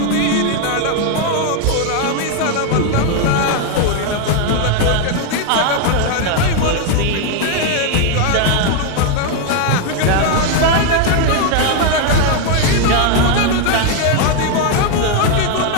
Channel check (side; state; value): both; different; correlation 0.01